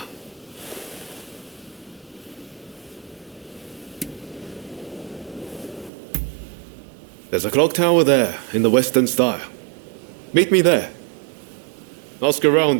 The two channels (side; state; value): left; drops out; at 5.9 s